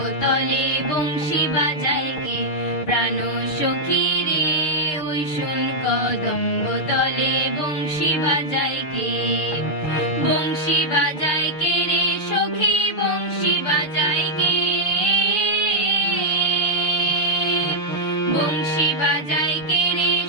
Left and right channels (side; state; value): right; late; 6.6 ms